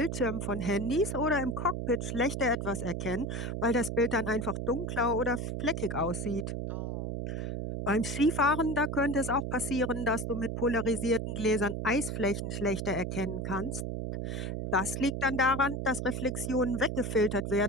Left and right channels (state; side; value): noise; right; hum, 3 dB below the sound